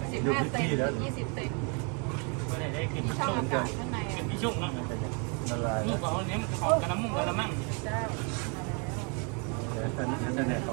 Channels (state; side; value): quieter; left; 35.7 dB